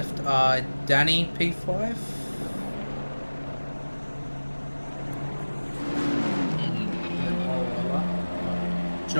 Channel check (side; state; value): both; inverted; correlation -1.00